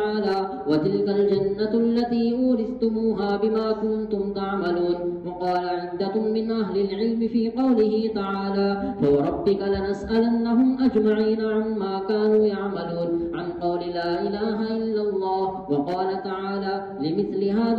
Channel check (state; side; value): identical; both; correlation 1.00